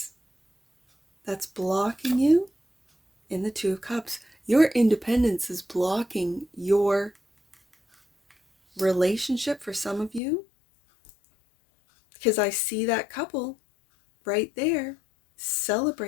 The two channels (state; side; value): drops out; right; at 10.2 s